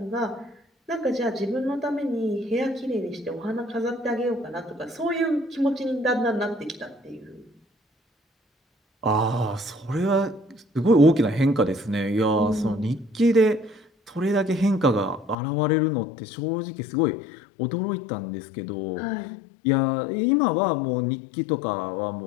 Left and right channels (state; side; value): drops out; right; at 15.4 s